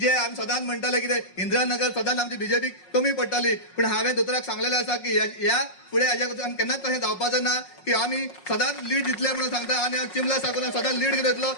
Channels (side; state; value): right; late; 5.5 ms